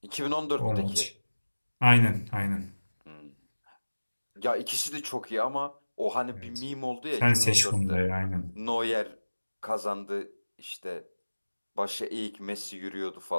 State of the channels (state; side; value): inverted; both; correlation -1.00